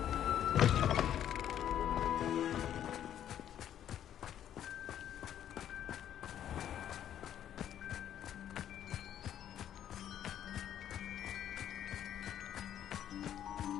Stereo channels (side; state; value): right; quieter; 10.5 dB